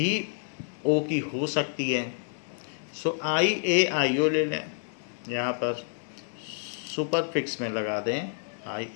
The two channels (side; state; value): right; silent; digital silence